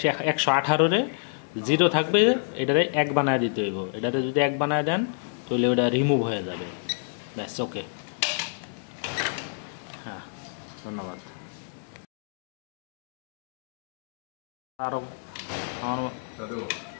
0 থাকবে, এটারে 1 বানায় দিতে হইব। এটারে যদি 1 বানায় দেন তাহলে ওটা রিমুভ হয়ে যাবে। ব্যাস, ওকে। হ্যাঁ, ধন্যবাদ। আরো আমার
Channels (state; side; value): silent; right; digital silence